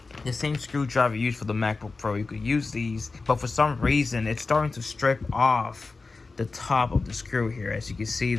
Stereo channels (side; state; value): right; quieter; 3.9 dB